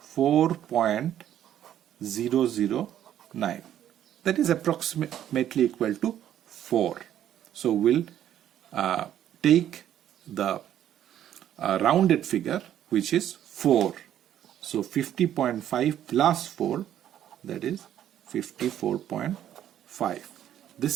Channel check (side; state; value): left; quieter; 11.0 dB